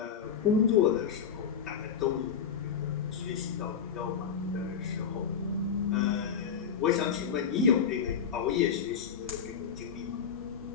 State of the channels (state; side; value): quieter; right; 7.2 dB